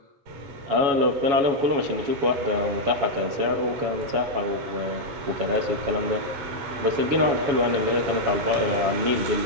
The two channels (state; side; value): late; left; 7.2 ms